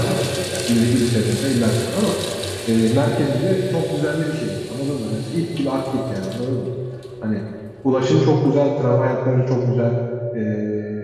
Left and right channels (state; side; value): identical; both; correlation 1.00